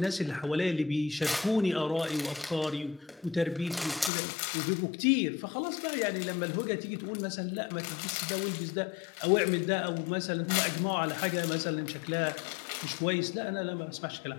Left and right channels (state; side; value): drops out; right; at 4.1 s